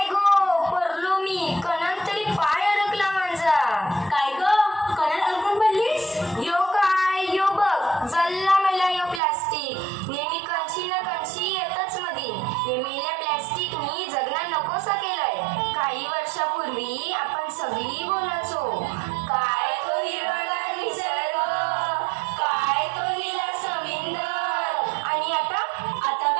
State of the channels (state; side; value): drops out; left; at 9.2 s